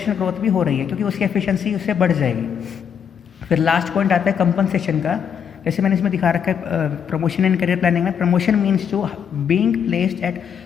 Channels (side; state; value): right; quieter; 7.8 dB